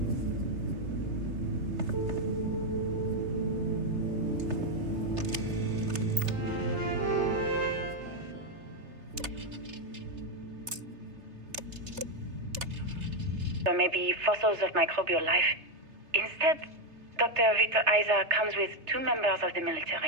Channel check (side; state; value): left; late; 3.3 ms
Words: Or maybe fossils of microbial life. Instead, Dr. Victor Isa comes with 2 members of the